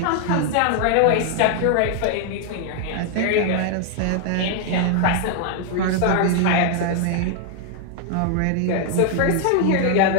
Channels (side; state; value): both; different; correlation 0.00